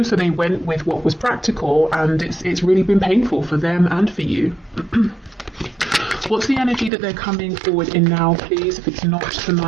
they went with what was practical, and it's really been painful for them and for you. What's the energy that they're coming forward in now, please? If it's not the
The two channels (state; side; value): drops out; left; at 6.9 s